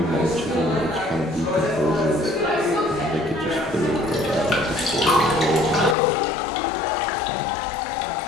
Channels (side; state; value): right; drops out; at 6.0 s